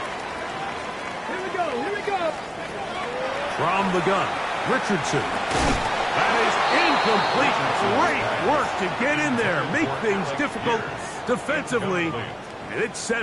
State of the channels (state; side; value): identical; both; correlation 1.00